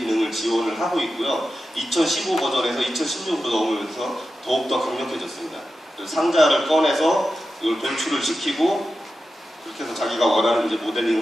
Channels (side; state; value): both; normal; correlation 0.91